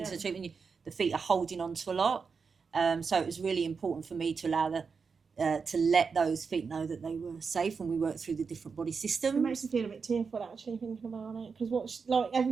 the treatment, the feet are holding onto a lot. So it was really important for me to allow to let those feet know that they were safe when we worked through the different body systems. It makes me feel a bit tearful actually thinking about it, because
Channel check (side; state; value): left; quieter; 5.3 dB